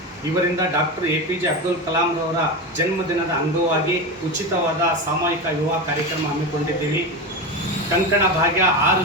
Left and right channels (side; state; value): both; normal; correlation 0.20